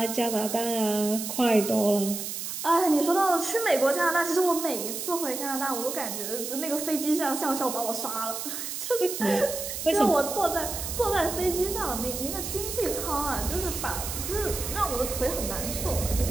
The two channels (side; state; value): right; noise; hiss, 5 dB below the sound